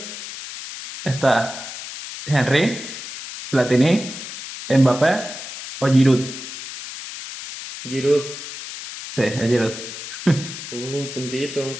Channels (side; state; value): left; noise; hiss, 10 dB below the sound